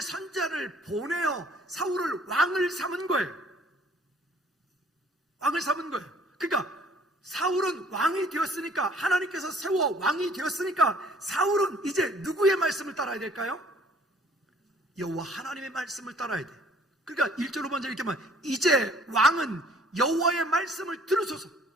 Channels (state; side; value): normal; both; correlation 0.57